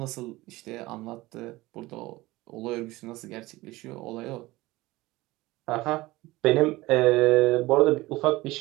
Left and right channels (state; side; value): quieter; left; 19.5 dB